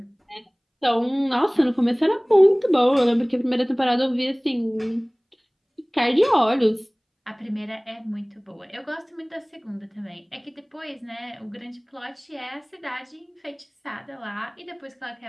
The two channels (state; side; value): identical; both; correlation 1.00